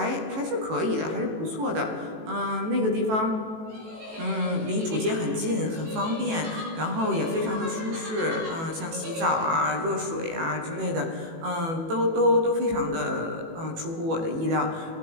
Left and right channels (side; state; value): left; late; 18 ms